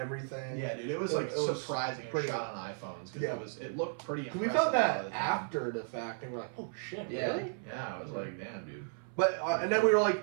Yeah, dude, it was It- like it was surprising and pretty- shot on iPhones because Yeah. it looked pretty 'Cause impressive. we found a lot that of the time. after the fact, and we're like, oh shit, Yeah, really? yeah, I was like, damn, dude. But and then we were like,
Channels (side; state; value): left; silent; 55 dB below the other